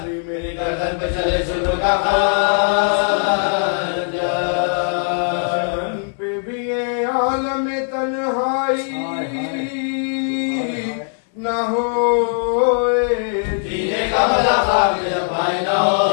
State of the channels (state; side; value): silent; right; digital silence